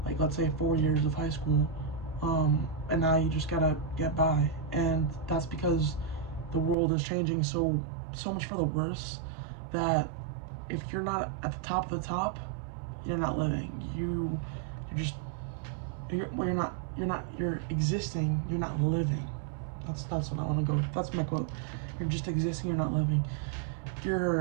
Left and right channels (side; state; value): left; drops out; at 6.8 s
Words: like let's say 4 years of high school, and now you just gotta get by, and that's because the world is changing so much for the worse that if you're not at the top of the top, you're not living. You're existing. You're not living. That's what I want to go with. That's my quote. You're just existing. You're not living.